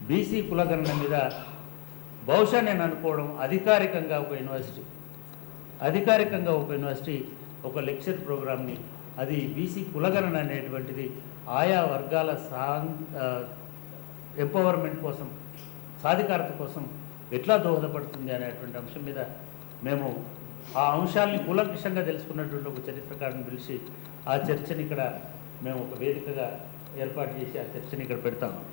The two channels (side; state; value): right; quieter; 29.6 dB